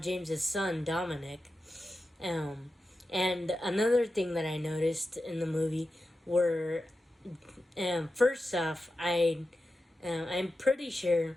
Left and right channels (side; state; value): both; normal; correlation 0.91